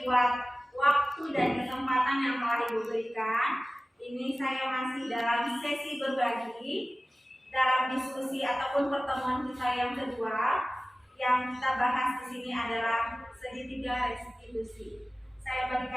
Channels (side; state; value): both; normal; correlation 0.97